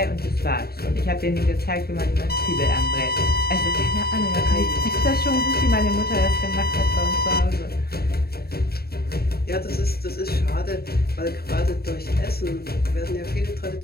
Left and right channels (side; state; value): right; late; 0.45 ms